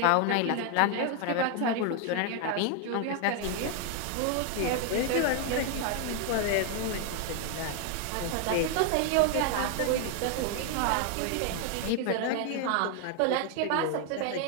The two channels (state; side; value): different; both; correlation 0.01